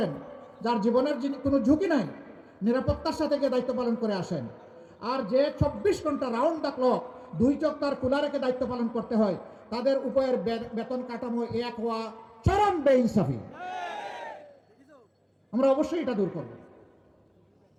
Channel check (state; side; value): identical; both; correlation 1.00